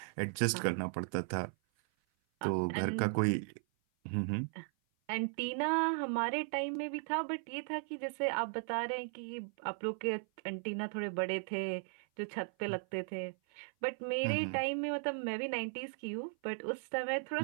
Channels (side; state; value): left; silent; 53 dB below the other